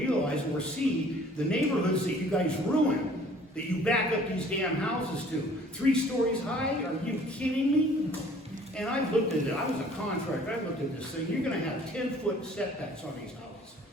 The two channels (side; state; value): both; normal; correlation 0.54